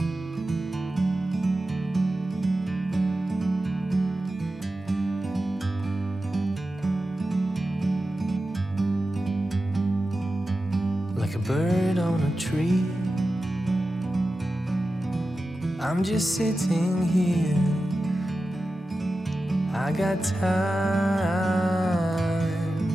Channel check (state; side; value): normal; both; correlation 0.93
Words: Like a bird on a tree, I'm just sitting here. I got time,